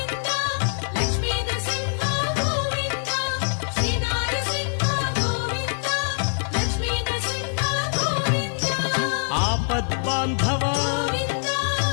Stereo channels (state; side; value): silent; right; digital silence